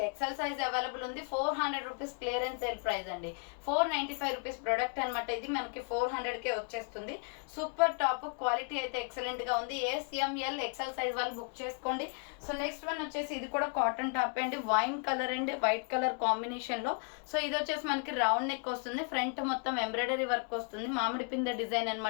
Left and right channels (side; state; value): right; quieter; 39.2 dB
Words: XL size available ఉంది. 400 రూపీస్ క్లియరెన్స్ సేల్ ప్రైస్ అండి. 495 రూపీస్ ప్రొడక్ట్ అనమాట. ఇది మనకి 400 కే వచ్చేస్తుంది. Super top. క్వాలిటీ అయితే ఎక్సలెంట్ గా ఉంది. ఎంఎల్ ఎక్సెల్ సైజ్ వాళ్ళు బుక్ చేసుకోండి. సో నెక్స్ట్ వన్ వచ్చేసి ఇది కూడా కాటన్ టాప్ అండి. Wine colour and white colour combination లో. సో ఇది వచ్చేసి మనకి రౌండ్ నెక్ వస్తుంది. ఫ్రంట్ మొత్తం ఎంబ్రాయిడరీ వర్క్ వస్తుంది. మామిడి పింద డిజైన్